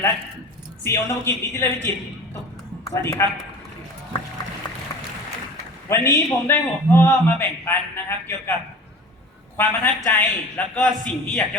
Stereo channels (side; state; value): both; normal; correlation 0.39